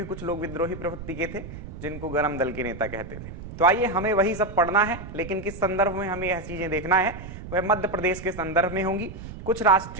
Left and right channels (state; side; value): noise; right; rumble, 11 dB below the sound